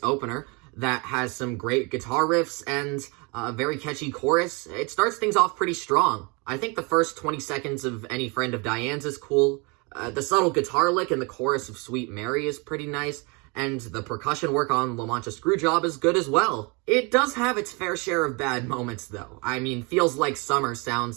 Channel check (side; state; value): left; quieter; 30.0 dB